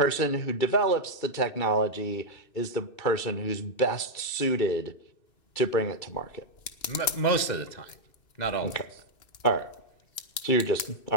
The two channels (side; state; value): right; late; 2.8 ms